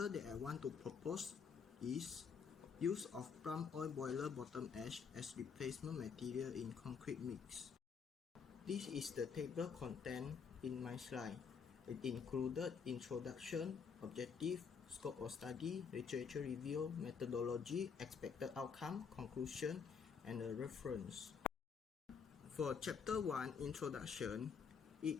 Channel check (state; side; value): quieter; right; 6.2 dB